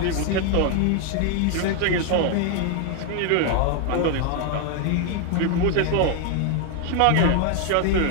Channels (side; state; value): both; different; correlation 0.00